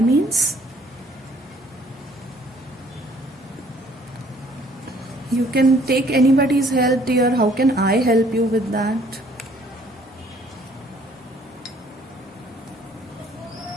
You can take anybody's help, dear. How can I help you with that?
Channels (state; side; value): normal; both; correlation 0.60